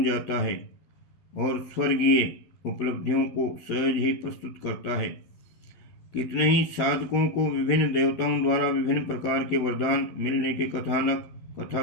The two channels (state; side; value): late; right; 12 ms